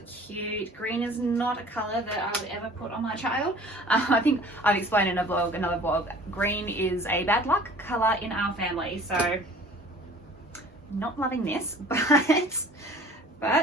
cute. Green is not a color that I would ever put on my child. I think I've explained in another vlog, green is a bad luck color in our family, so not loving this, but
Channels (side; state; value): both; normal; correlation 0.47